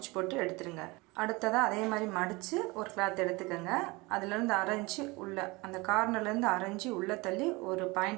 போட்டு எடுத்துருங்க. அடுத்ததாக அதே மாதிரி மடித்து ஒரு கிளாத் எடுத்துக்கோங்க. அதுலேருந்து 1/2 இன்ச்சு உள்ள அந்த கார்னர்லேருந்து 1/2 இன்ச்சு உள்ளே தள்ளி ஒரு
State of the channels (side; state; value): left; quieter; 24.1 dB